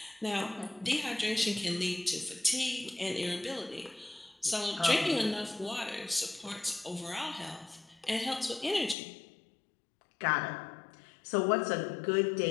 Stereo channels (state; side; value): drops out; right; at 9.0 s